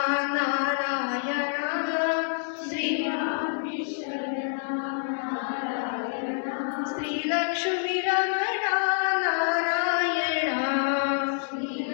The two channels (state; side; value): silent; right; digital silence